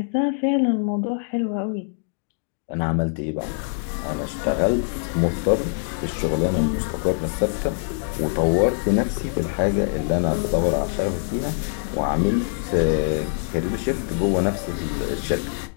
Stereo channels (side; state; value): right; silent; digital silence